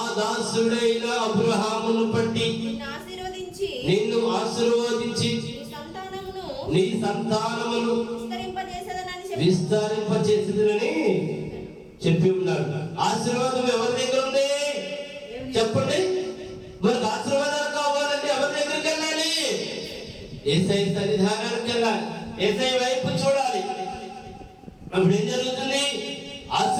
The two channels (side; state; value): both; identical; correlation 1.00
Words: దాసుడైన అబ్రహామును బట్టి నిన్ను ఆశీర్వదించి నీ సంతానమును విస్తరింపచేసేదనని చెప్పి ఉన్నాడు. ఆశీర్వాదం ఎవరి దగ్గర ఉంది చెప్పండి? మనకు ఆశీర్వాదాలు కావాలంటే ఎవరి దగ్గరికి వెళ్ళాలి? యేసయ్య సన్నిధానానికి వెళ్ళాలి, యేసయ్య వైపు చూడాలి. అప్పుడు ఏం జరుగుతుంది?